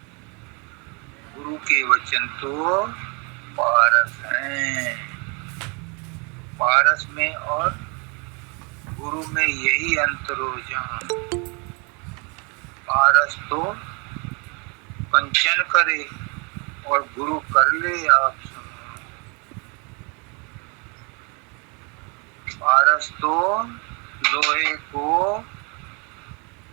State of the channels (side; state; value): left; quieter; 32.3 dB